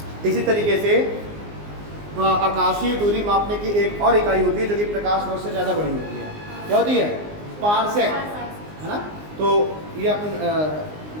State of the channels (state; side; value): late; left; 19 ms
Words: इसी तरीके से आकाशीय दूरी मापने की एक और इकाई होती है जो कि प्रकाश वर्ष से ज़्यादा बड़ी होती है। क्या होती है? पारसेक, है ना। तो ये अपन